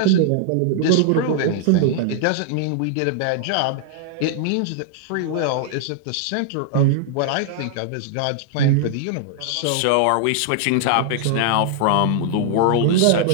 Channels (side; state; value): both; different; correlation -0.01